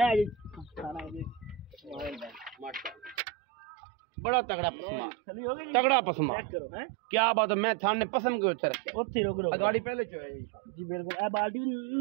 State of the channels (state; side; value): drops out; left; at 3.2 s